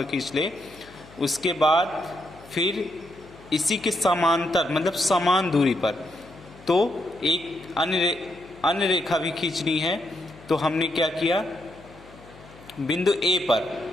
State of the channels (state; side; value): noise; left; hum, 22 dB below the sound